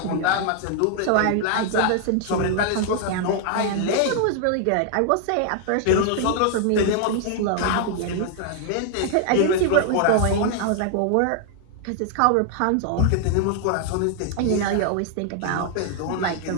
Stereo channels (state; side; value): different; both; correlation 0.00